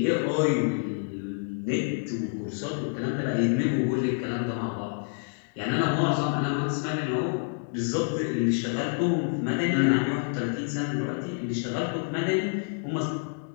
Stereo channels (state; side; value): silent; right; 59 dB below the other